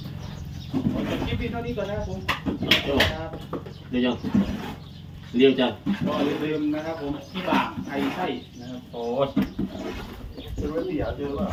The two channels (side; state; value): both; identical; correlation 1.00